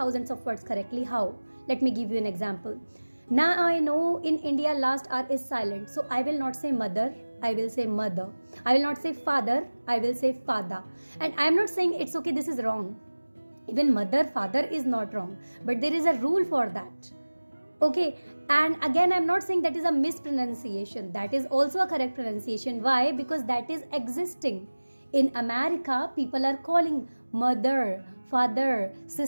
of words correctly. How? Let me give you an example. Now I know in India last R is silent. So I will not say mother, I will say mother. I will not say father, I will say father. And I am not saying it's okay, this is wrong. Even mother, father is not wrong. But there is a rule for that. Okay, and again I'm not saying that is a mispronunciation. That is also a correct pronunciation. Why? Because that is existing. In America, people are calling mother, father,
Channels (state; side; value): inverted; both; correlation -1.00